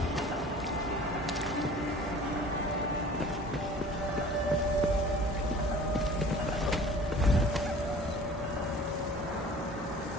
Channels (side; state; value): both; normal; correlation 0.46